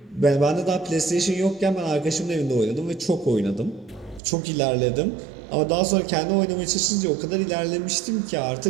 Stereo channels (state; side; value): drops out; left; at 4.2 s